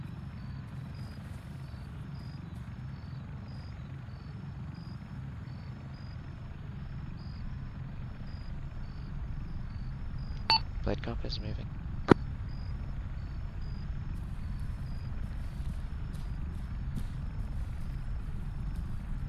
Blade cop is moving.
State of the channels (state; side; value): identical; both; correlation 1.00